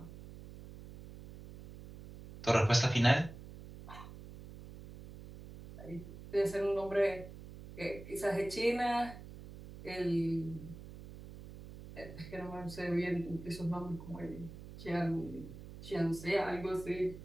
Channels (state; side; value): noise; right; hum, 14 dB below the sound